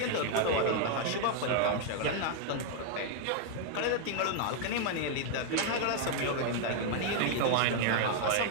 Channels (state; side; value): different; both; correlation 0.00